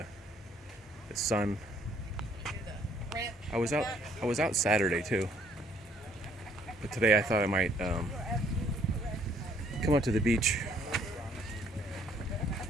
sun. I was out Saturday too, but today I thought I might come out to the beach,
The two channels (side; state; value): both; normal; correlation 0.64